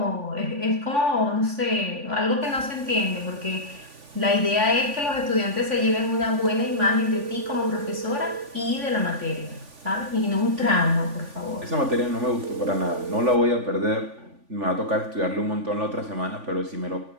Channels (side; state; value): left; late; 3.5 ms